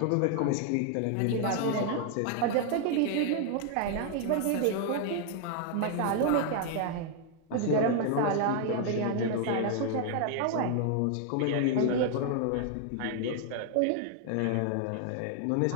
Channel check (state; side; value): different; both; correlation 0.00